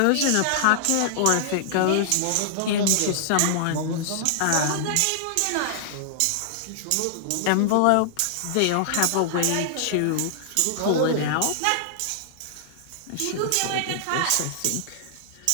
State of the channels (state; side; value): different; both; correlation -0.01